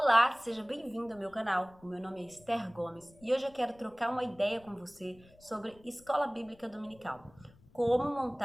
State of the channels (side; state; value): left; noise; rumble, 26 dB below the sound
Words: Olá, seja bem-vindo ao meu canal. O meu nome é Esther Gomes e hoje eu quero trocar uma ideia com você sobre escola bíblica dominical. Como